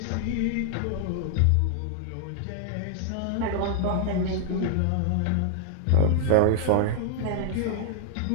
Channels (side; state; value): both; different; correlation -0.01